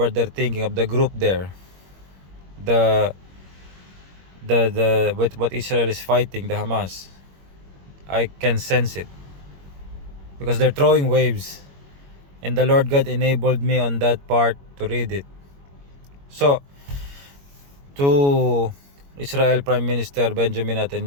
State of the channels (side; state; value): left; late; 21 ms